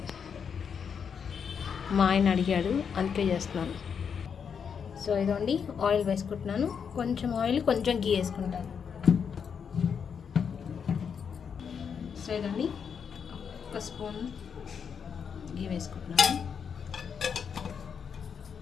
మా ఆయన అడిగాడు అందుకే చేస్తున్నాను. సో ఇదండి ఆయిల్ వేసుకుంటున్నాను. కొంచెం ఆయిల్, కొంచెం గీ వేసుకుంటాను. సో ఇదండి ఒక స్పూన్ గీ వేసుకుంటున్నాను.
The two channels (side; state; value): right; quieter; 6.9 dB